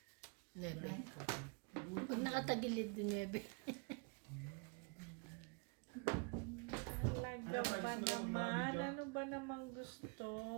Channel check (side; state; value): left; quieter; 34.1 dB